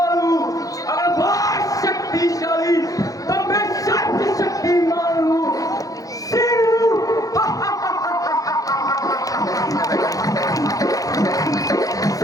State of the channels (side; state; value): right; late; 0.17 ms